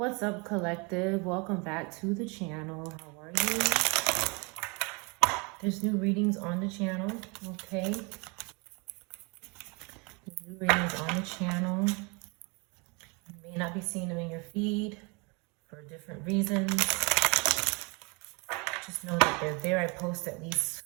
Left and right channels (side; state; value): left; quieter; 30.2 dB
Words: up, collective? Welcome back to the channel. How are you? There's new readings on the channel, okay? There's new readings on the channel. You may not be seeing them in your feed for different reasons. Just know that they're there. I post at least